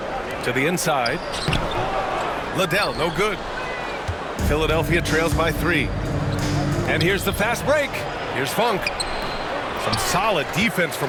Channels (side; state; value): both; identical; correlation 1.00